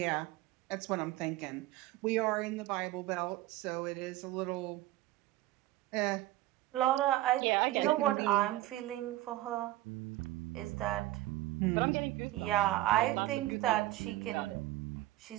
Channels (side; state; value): left; quieter; 16.5 dB